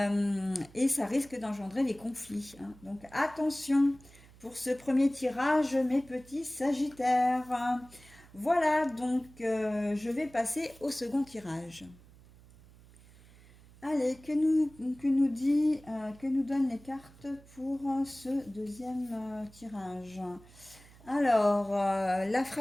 Et ça risque d'engendrer des conflits, hein. Donc attention pour ce premier tirage, mes petits sagittaires. Voilà, donc je vais passer au second tirage. Allez, que nous donnent les cartes pour ce deuxième tirage? Alors, la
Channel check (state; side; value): noise; right; hum, 24 dB below the sound